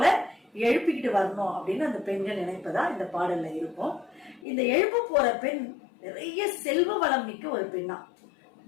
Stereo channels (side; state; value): right; drops out; at 4.5 s